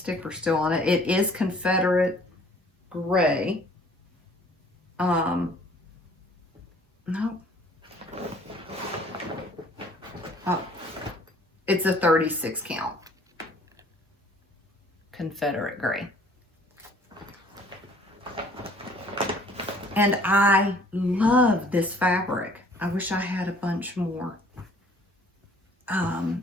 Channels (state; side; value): normal; both; correlation 0.55